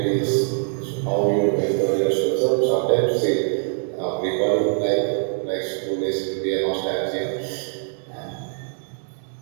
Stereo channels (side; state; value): left; silent; 63 dB below the other